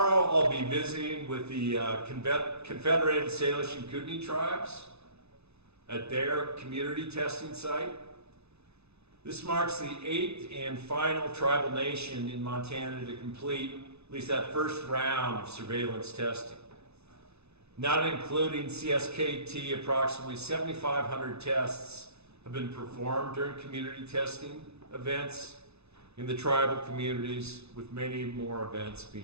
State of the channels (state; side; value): late; left; 0.80 ms